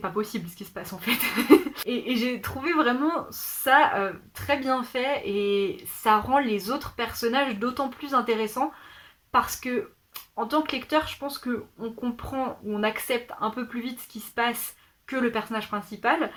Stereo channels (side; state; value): both; identical; correlation 1.00